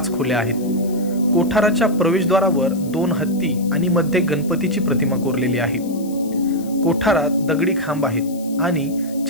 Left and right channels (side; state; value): left; noise; hiss, 20 dB below the sound